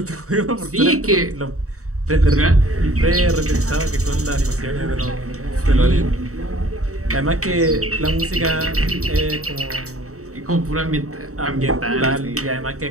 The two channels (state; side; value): late; left; 0.65 ms